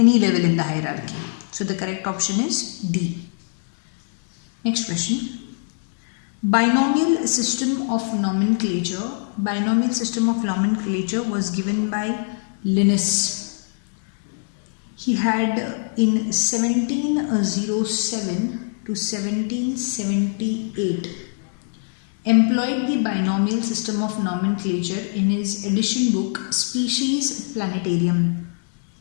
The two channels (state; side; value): silent; right; digital silence